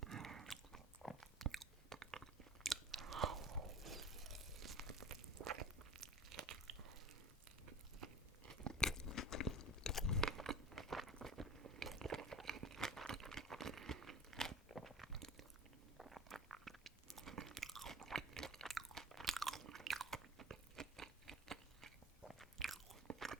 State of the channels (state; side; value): normal; both; correlation 0.39